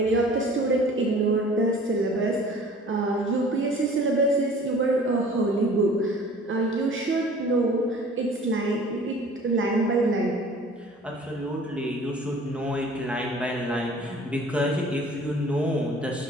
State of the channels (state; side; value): normal; both; correlation 0.48